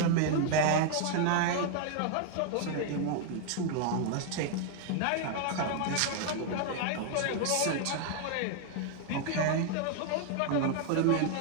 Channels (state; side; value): different; both; correlation 0.00